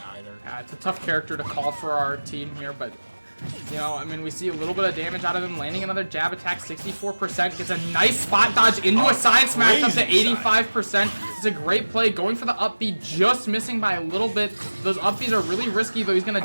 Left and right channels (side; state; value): both; inverted; correlation -1.00